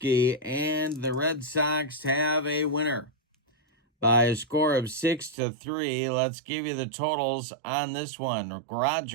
and the Red Sox have a winner by a score of 6-3. Let's give you the totals on this one.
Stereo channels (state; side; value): drops out; left; at 5.4 s